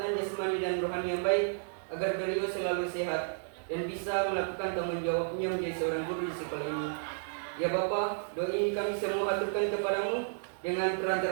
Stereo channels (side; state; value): left; silent; digital silence